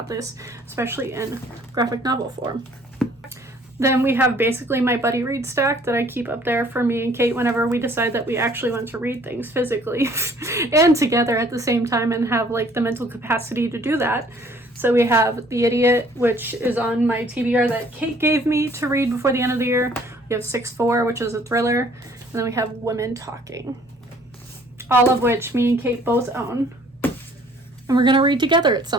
this, especially in graphic novel form. Then we have basically my buddy read stack that I keep up there for me and Kate whenever we decide that we actually want to read things physically and together at the same time and have like the mental capacity to do that. So we have The Idiot, which is on my TBR that Kate gave me to read before the end of the year. We have 6-4, which is a thriller. And then we have Women Talking, all of which me and Kate both own. And we're going to read together at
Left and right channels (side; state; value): both; normal; correlation 0.58